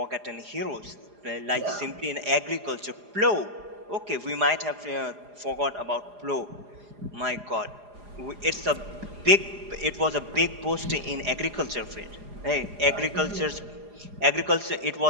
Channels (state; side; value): late; left; 4.9 ms